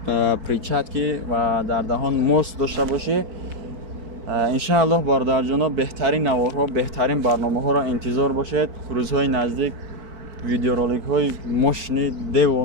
перчатки ва дар даҳон моск дошта бошӣ. иншааллоҳ бародарҷоно беҳтарин наворҳо, беҳтарин барномаҳоро интизор бошед. Рӯзҳои наздик видеороликҳои мошини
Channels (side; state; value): left; late; 4.6 ms